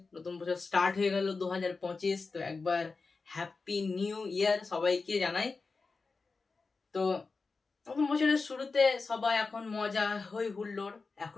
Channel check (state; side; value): quieter; right; 4.2 dB